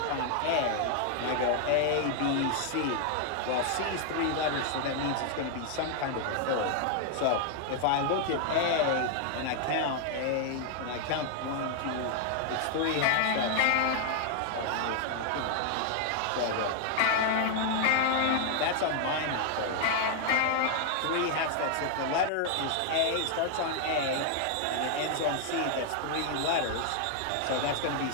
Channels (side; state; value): both; different; correlation 0.00